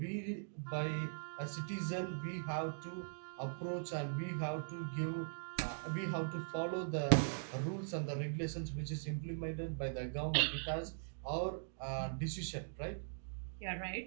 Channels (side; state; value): left; silent; digital silence